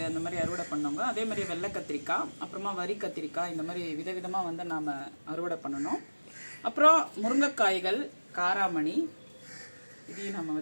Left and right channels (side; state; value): both; inverted; correlation -1.00